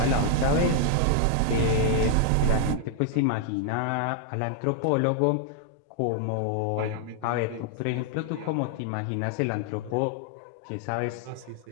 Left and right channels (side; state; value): both; different; correlation 0.00